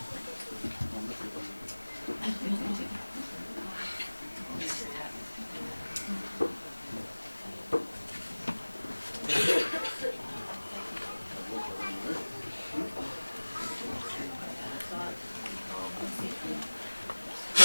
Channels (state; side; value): inverted; both; correlation -1.00